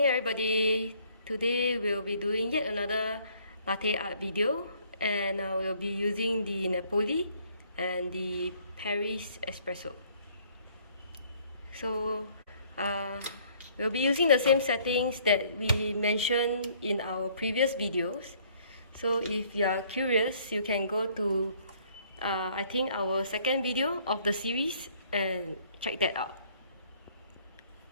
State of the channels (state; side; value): inverted; both; correlation -0.61